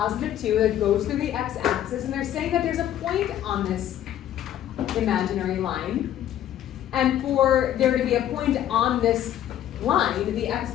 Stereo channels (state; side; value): quieter; right; 11.4 dB